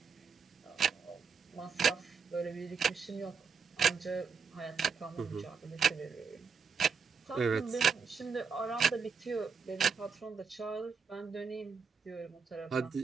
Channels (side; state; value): left; quieter; 5.8 dB